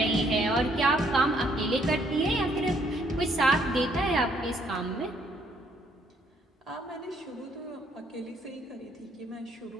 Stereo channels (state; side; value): normal; both; correlation 0.67